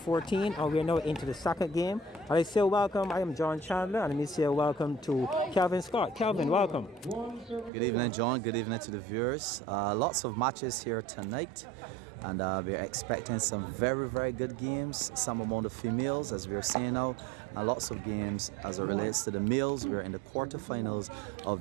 and we're now into the second game. I say welcome. I am John Chandler, and let me say welcome to Calvin Scott. Calvin, welcome. Good evening, John. Good evening to the viewers. Lots of matches here tonight, and we're expecting some very, very good games. Some among the females, as we're seeing now, and lots of games as it relates to the males. We're in the quarterfinals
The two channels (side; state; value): left; drops out; at 7.7 s